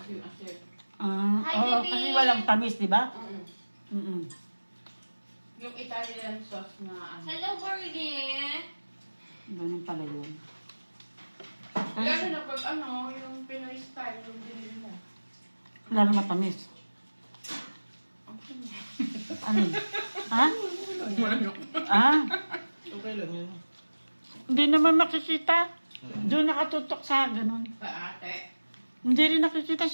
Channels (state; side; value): inverted; both; correlation -1.00